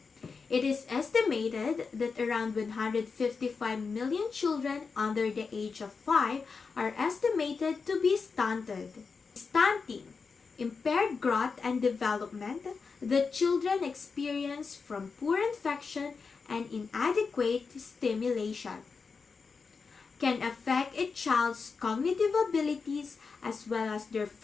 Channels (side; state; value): right; quieter; 5.0 dB